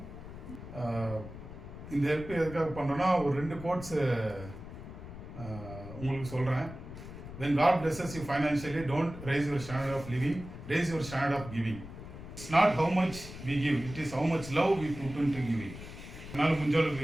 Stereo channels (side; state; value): left; noise; rumble, 12 dB below the sound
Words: இந்த ஹெல்ப் எதுக்காக பண்ணுறோன்னா, ஒரு 2 கோட்ஸ் உங்களுக்கு சொல்கிறேன். When God blesses you financially, don't raise your standard of living, raise your standard of giving. It's not how much we give, it is how much love we put into giving. என்னால்